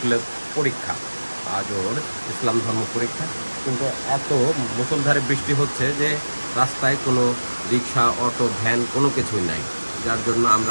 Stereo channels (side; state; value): both; inverted; correlation -1.00